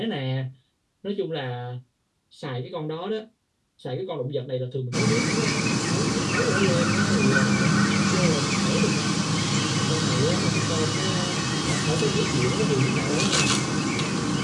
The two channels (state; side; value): identical; both; correlation 1.00